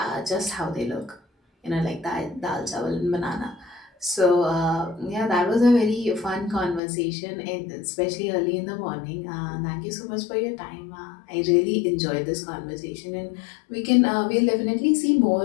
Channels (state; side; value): drops out; right; at 6.8 s